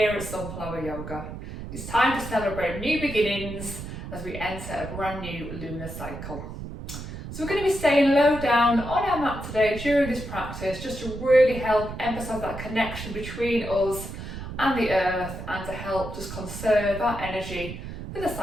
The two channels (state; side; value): noise; right; rumble, 9 dB below the sound